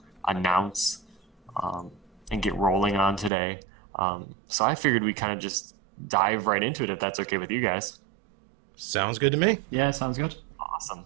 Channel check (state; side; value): drops out; left; at 3.3 s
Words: announce and get rolling on today. So I figured we kind of just dive right into it if that's okay with you guys. Sounds good to me. Yeah, sounds good. Awesome.